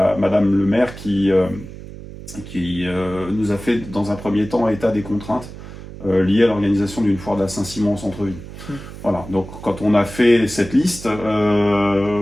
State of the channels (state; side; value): noise; right; hum, 14 dB below the sound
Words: le maire qui nous a fait dans un premier temps état des contraintes liées à l'organisation d'une foire de la Saint-Simon en centre-ville. Voilà, donc quand on a fait cette liste,